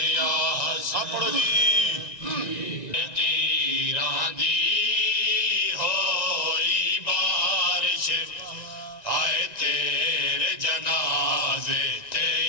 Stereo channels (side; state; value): right; late; 1.9 ms